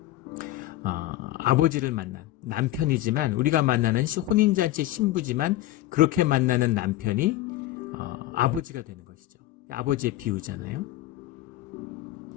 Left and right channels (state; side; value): quieter; right; 15.1 dB